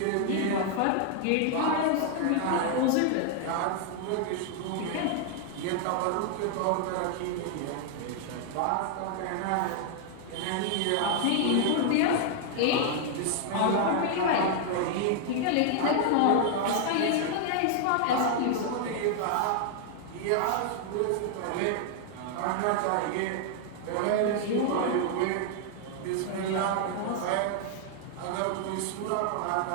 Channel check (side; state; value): both; different; correlation 0.00